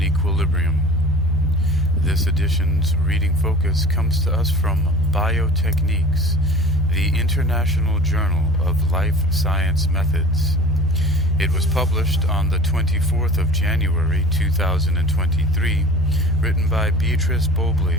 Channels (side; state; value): both; normal; correlation 0.41